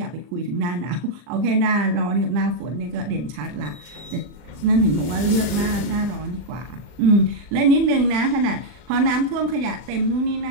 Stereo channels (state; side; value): late; left; 40 ms